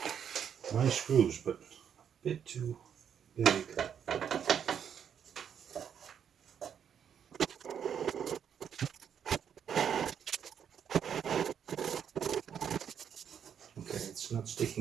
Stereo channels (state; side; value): quieter; left; 8.3 dB